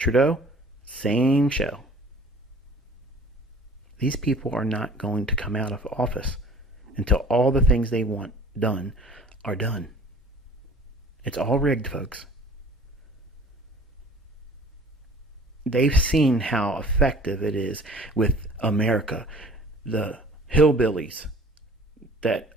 same show. These people are not going to come out of office until all the things they want done are done. It's all rigged, folks. They've seen how effective it is with America. The hillbillies that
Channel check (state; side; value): normal; both; correlation 0.48